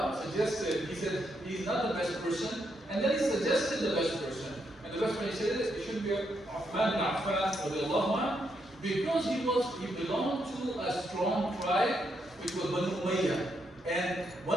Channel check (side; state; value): both; normal; correlation 0.79